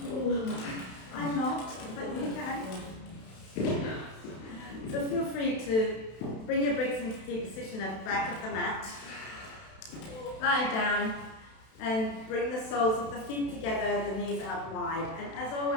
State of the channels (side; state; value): right; late; 32 ms